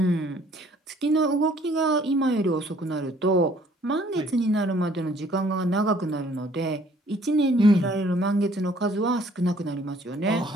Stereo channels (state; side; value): normal; both; correlation 0.59